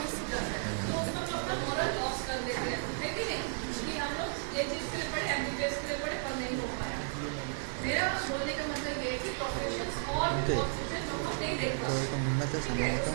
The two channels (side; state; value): left; silent; 55 dB below the other